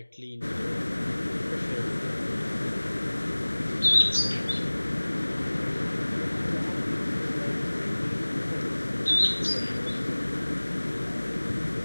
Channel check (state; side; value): inverted; both; correlation -1.00